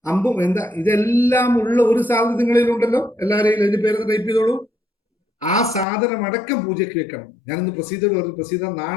അമ്പും എന്താ ഇതെല്ലാം ഉള്ള ഒരു സാധനം നിങ്ങളിലുണ്ടല്ലോ, എല്ലാവരെയും അതിന്റെ പേര് ടൈപ്പ് ചെയ്തോളൂ. ആ സാധനം അടക്കം പൂജയ്ക്ക് വെക്കണം. ഞാനിന്ന് പ്രസീദോട് പറഞ്ഞു, പ്രസീദ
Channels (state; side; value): drops out; right; at 5.9 s